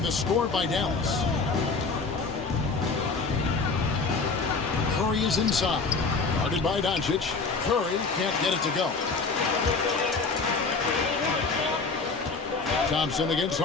the score by Dallas. Curry is inside. Guarded by Doncic. Curry can't get it to go. Thompson against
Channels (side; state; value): right; quieter; 4.3 dB